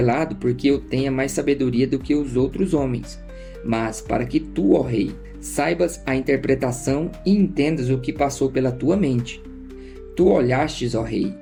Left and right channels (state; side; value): identical; both; correlation 1.00